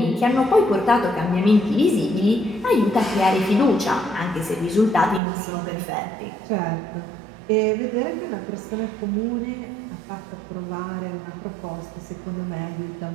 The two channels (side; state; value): left; drops out; at 5.2 s